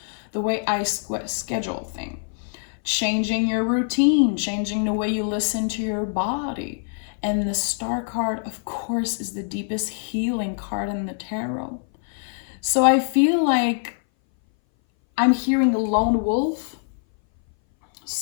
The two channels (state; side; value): silent; right; 59 dB below the other